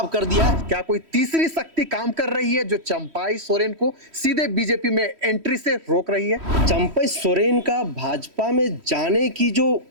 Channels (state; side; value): late; left; 3.1 ms